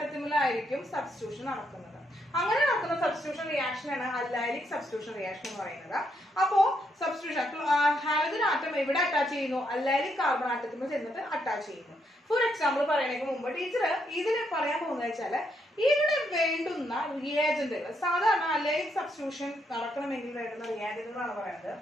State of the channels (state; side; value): normal; both; correlation 0.77